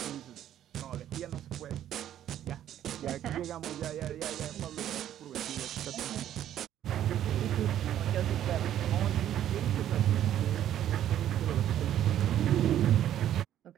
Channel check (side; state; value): left; quieter; 11.3 dB